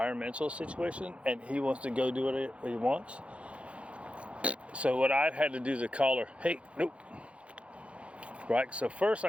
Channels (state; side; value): late; left; 0.061 ms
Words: situation, and he wants to go do what he wants. So what I've had to do is a collar, hey, nope. Right, so first